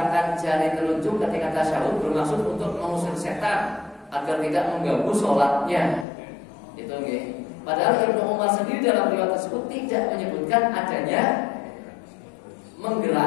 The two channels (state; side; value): drops out; right; at 6.1 s